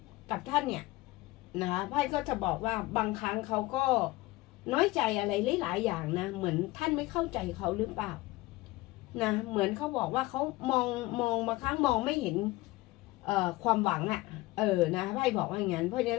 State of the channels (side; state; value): right; quieter; 19.8 dB